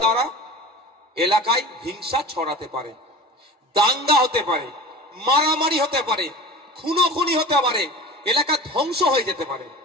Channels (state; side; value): normal; both; correlation 0.35